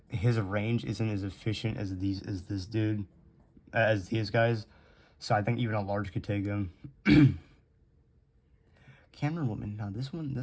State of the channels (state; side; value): identical; both; correlation 1.00